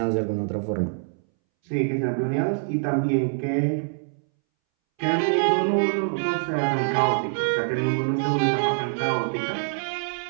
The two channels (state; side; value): silent; left; 62 dB below the other